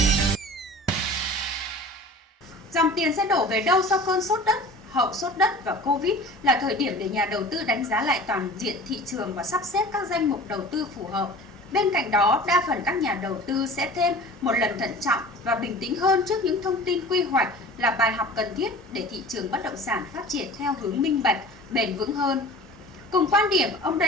Dòng tiền sẽ đổ về đâu sau cơn sốt đất? Hậu sốt đất và Covid là thời điểm để nhà đầu tư đánh giá lại toàn diện thị trường và sắp xếp các danh mục đầu tư phù hợp. Bên cạnh đó, đa phần các nhà đầu tư sẽ thêm một lần thận trọng và bình tĩnh hơn trước những thông tin quy hoạch là bài học cần thiết để thị trường bất động sản phát triển theo hướng minh bạch, bền vững hơn. Cùng quan điểm, ông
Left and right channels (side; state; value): both; normal; correlation 0.40